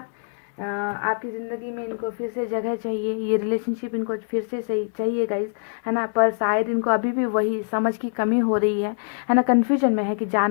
आपकी ज़िंदगी में इनको फिर से जगह चाहिए, ये रिलेशनशिप इनको फिर से सही चाहिए गाइस, है ना। पर शायद इनको अभी भी वही समझ की कमी हो रही है ना। कन्फ्यूजन में है कि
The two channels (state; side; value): silent; right; digital silence